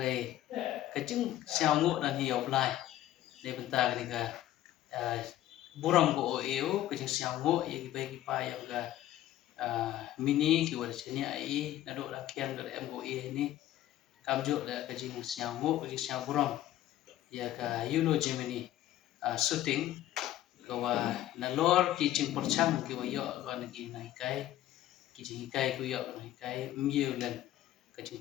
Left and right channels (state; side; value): quieter; right; 13.6 dB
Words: ka chung xiao ngo dan hiau blai de benta ka ni ka buram ko eu ka chung xiao ngo ye ki bai ki pa yang ka mini ki wa cheni ai na do la kian do em go e ni kam jo la ka jing siang ngo ka siang buram ya ka yulo Gemini shooting ka wa na lor ki jing porchang ki wa yo ka na ki nai kai ki jing kai ku yo nai kai myew len ka jing